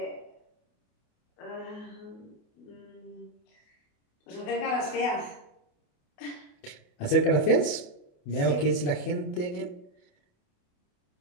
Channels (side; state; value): right; late; 28 ms